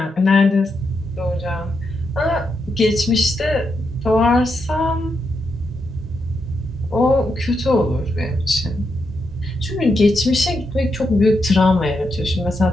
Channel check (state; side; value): normal; both; correlation 0.83